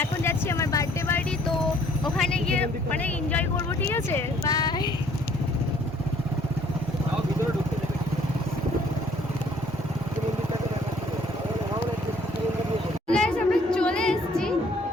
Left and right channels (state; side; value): normal; both; correlation 0.60